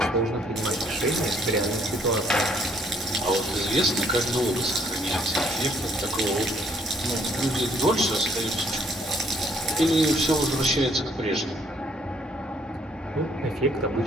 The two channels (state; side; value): normal; both; correlation 0.65